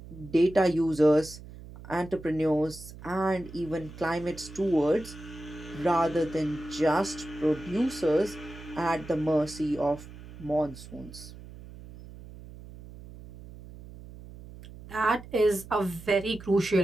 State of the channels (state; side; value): noise; right; hum, 16 dB below the sound